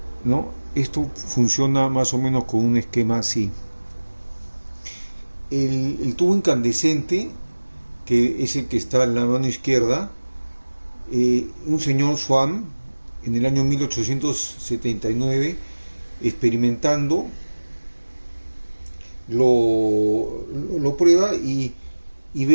¿no? Esto funciona más o menos con un esquema así. El tubo incandescente, que es el que está en la mano izquierda, un señor Swan en el año 1879, experimentando, lo prueba y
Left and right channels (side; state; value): both; inverted; correlation -1.00